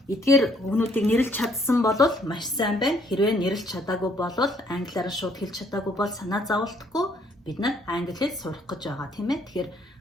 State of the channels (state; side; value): normal; both; correlation 0.65